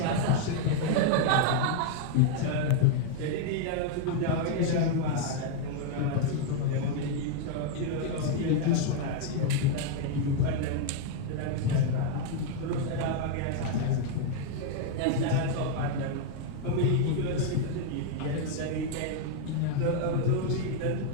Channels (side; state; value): both; different; correlation 0.00